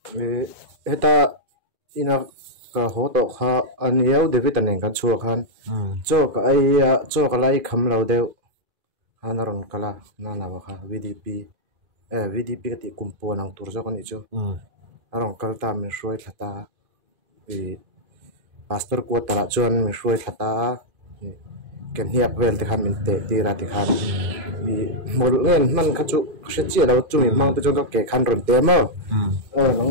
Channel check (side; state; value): left; late; 2.5 ms